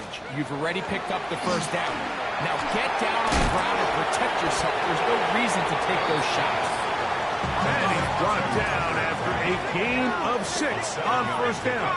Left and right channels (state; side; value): identical; both; correlation 1.00